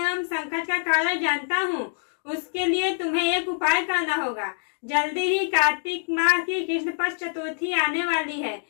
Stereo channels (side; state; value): right; silent; digital silence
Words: एवं संकट का कारण जानता हूँ। उसके लिए तुम्हें एक उपाय करना होगा। जल्दी ही कार्तिक माह की कृष्ण पक्ष चतुर्थी आने वाली है।